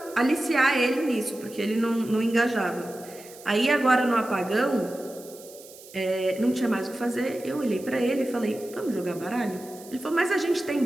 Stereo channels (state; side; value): noise; right; hiss, 19 dB below the sound